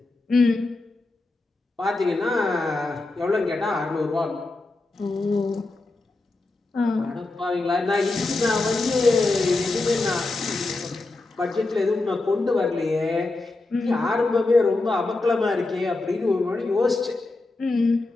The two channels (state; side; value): quieter; right; 3.2 dB